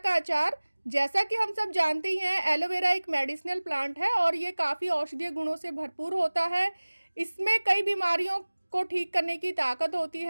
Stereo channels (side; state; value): both; inverted; correlation -1.00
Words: अचार। जैसा कि हम सब जानते ही हैं, एलोवेरा एक मेडिसिनल प्लांट है और ये काफ़ी औषधीय गुणों से भरपूर होता है। इसमें कई बीमारियों को ठीक करने की ताकत होती